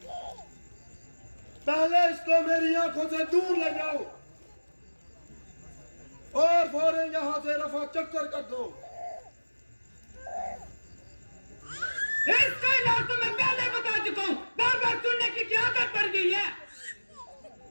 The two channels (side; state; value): both; inverted; correlation -1.00